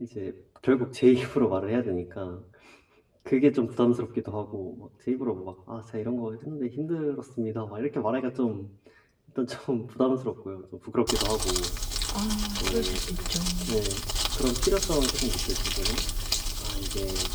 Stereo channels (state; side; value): identical; both; correlation 1.00